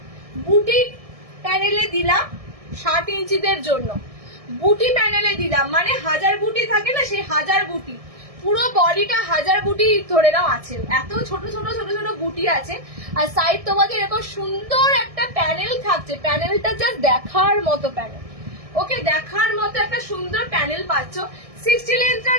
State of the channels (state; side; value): late; left; 1.6 ms